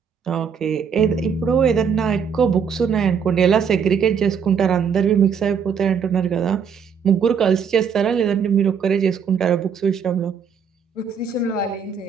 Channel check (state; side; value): quieter; left; 6.7 dB